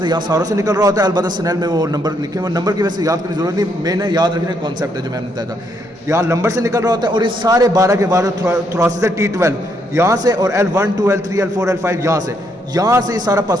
यहाँ सारों से निकल रहा होता है। अलबत्ता स्नेल में वो नंबर लिखे हुए, नंबर की वजह से याद करने की जरूरत नहीं, मैंने याद रखने का कॉन्सेप्ट है जो मैंने बताया था। यहाँ नंबर से निकल रहा होता है और ये सारे 12 के 12 थोरासिस है T12 यहाँ से, और L1, 2, L3, L4, L5 यहाँ से ये सारा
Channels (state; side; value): normal; both; correlation 0.74